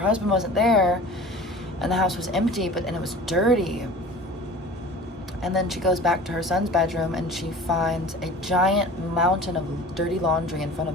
husband wasn't there, and the house was empty, and it was dirty. And then she goes back to her son's bedroom and she finds a giant mountain of dirty laundry in front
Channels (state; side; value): normal; both; correlation 0.40